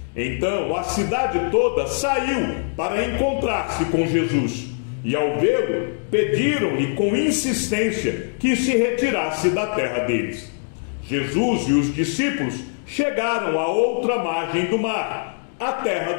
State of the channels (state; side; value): silent; right; 64 dB below the other